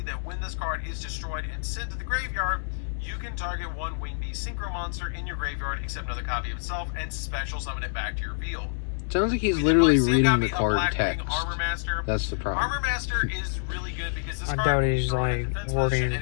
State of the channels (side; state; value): right; silent; digital silence